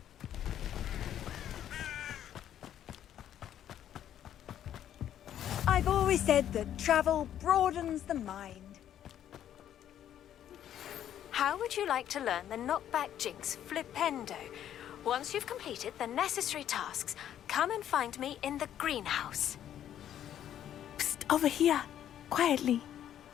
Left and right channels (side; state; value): right; quieter; 10.7 dB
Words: I've always said that travel broadens the mind. How would you like to learn the knockback jinx flipendo? Once you've completed the necessary tasks, come and find me in the greenhouse. Psst, over here, quietly.